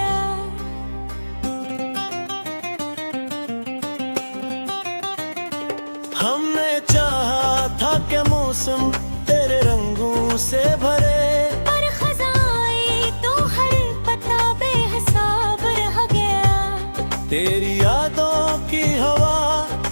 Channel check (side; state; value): both; inverted; correlation -1.00